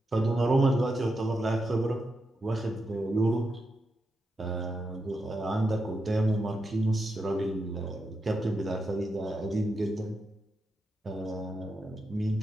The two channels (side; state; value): both; normal; correlation 0.86